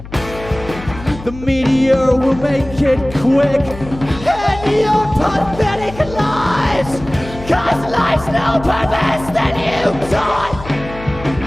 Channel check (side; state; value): left; noise; hum, 14 dB below the sound